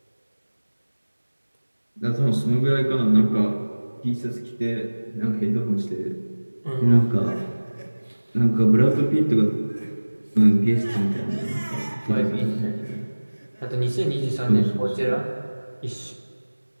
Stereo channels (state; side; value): inverted; both; correlation -1.00